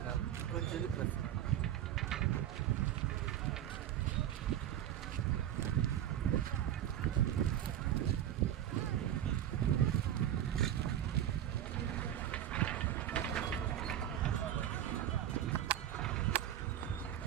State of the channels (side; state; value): left; quieter; 11.2 dB